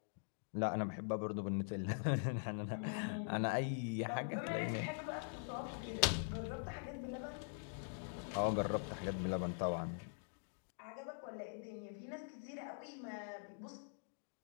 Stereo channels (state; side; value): silent; right; digital silence